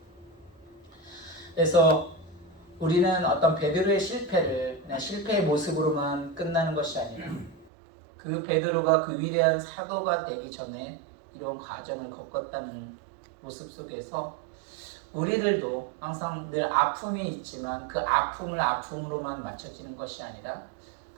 그래서 우리는 어떤 베드로의 실패를 그냥 실패의 모습으로만 끝나는 것이 아니라 그 베드로가 그 위대한 사도가 되기 전에 이런 과정을 겪었다는 모습 속에서 우리들도 항상 늘 아픔이 있지만 그 아픔을 아픔으로만 맞춰지는 것이 아니라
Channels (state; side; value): drops out; left; at 7.7 s